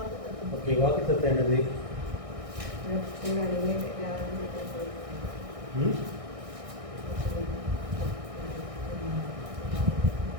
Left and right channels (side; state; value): left; late; 1.6 ms